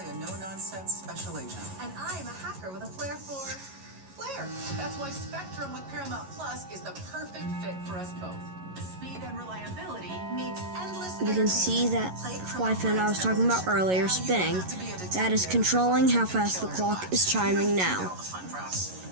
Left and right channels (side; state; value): left; late; 11 ms